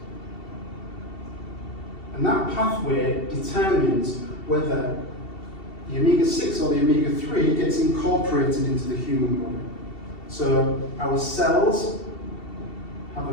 And that pathway determines whether the omega-6 or the omega-3 gets incorporated into the human body. So our cells have a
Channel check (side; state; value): right; late; 2.7 ms